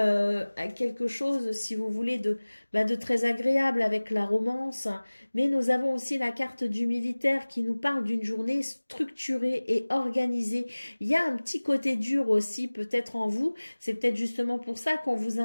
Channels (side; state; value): both; inverted; correlation -1.00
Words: quelque chose, si vous voulez, de très agréable avec la romance. Mais nous avons aussi la carte du militaire qui nous parle d'une journée structurée et organisée. Il y a un petit côté dur aussi, peut-être en vous. C'est peut-être justement pour ça qu'on vous